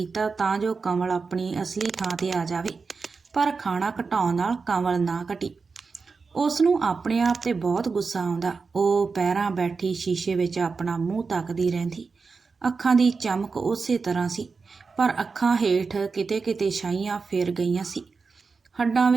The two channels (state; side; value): quieter; left; 4.7 dB